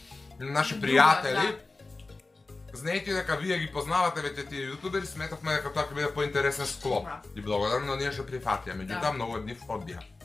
на наши пријатели. Знаете дека вие ги познавате веќе тие јутубери, сметавме дека тоа ќе биде поинтересен склоп. И благодарно ние што прифатија, меѓутоа многу од нив одбија.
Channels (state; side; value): quieter; right; 3.5 dB